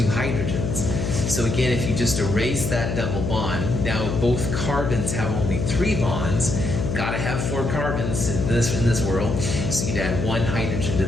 hydrogens. So again, if you just erase that double bond, now both carbons have only 3 bonds. Got to have 4 carbons in this world. So you'd add 1 hydrogen to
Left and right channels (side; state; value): left; noise; hum, 2 dB below the sound